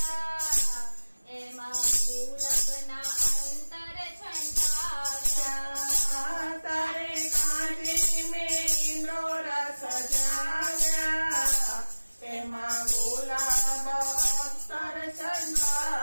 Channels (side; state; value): both; inverted; correlation -1.00